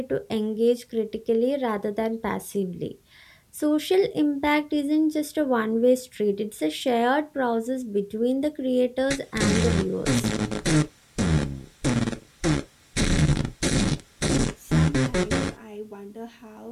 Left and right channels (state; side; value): identical; both; correlation 1.00